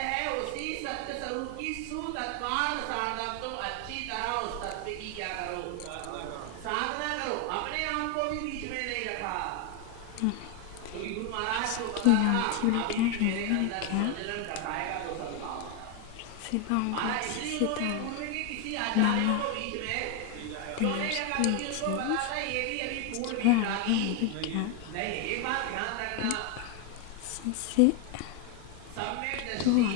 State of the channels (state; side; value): different; both; correlation 0.01